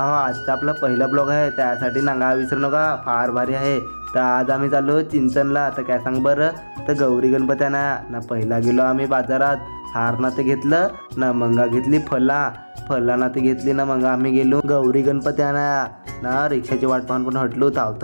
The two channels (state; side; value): inverted; both; correlation -1.00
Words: आजचा आपला पहिला ब्लॉग आहे, त्यासाठी नांगा विसरू नका, फार भारी आहे. तर आज आम्ही चाललो चिंचणला. तर काय सांग बरं, तर गौरी गणपती ना पहिला गेलो आम्ही बाजारात, हार ना ते घेतलं ना, मंगा घेतली फला ना ते घेतली ना, मग आम्ही गेलो गौरी गणपती ना रिक्षाची वाट पाहून पण हटलो,